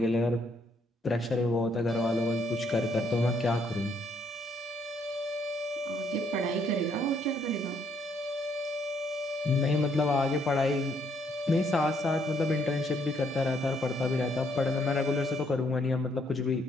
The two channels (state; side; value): normal; both; correlation 0.70